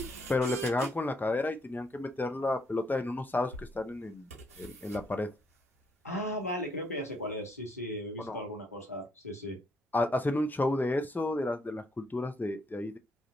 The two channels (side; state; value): both; normal; correlation 0.73